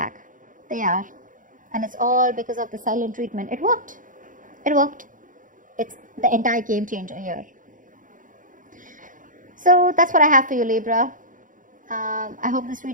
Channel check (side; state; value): left; late; 0.38 ms